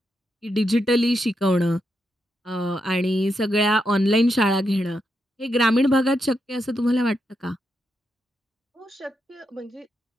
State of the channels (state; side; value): normal; both; correlation 0.83